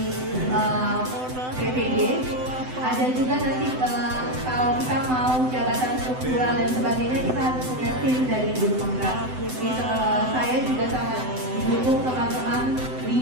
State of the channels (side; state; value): left; late; 7.9 ms